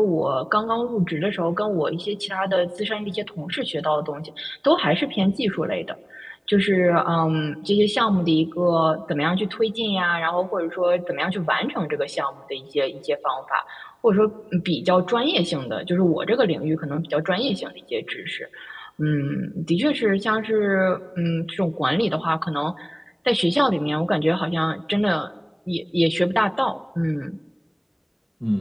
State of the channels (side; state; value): both; identical; correlation 1.00